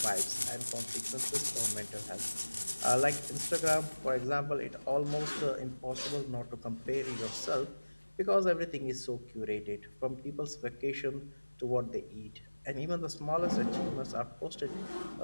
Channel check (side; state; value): both; inverted; correlation -1.00